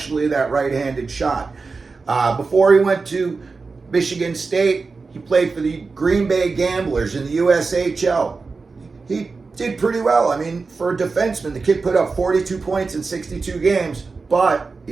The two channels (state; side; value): quieter; left; 4.3 dB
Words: that right-handed shot. Before he went to Michigan State, he played for the Green Bay Gamblers in the USHL. He did pretty well. I mean, for a defenseman, the kid put up 42 points in 62 games, but